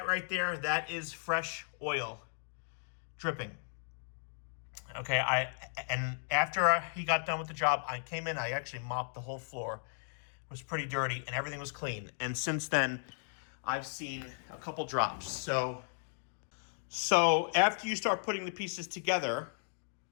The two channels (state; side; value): silent; right; digital silence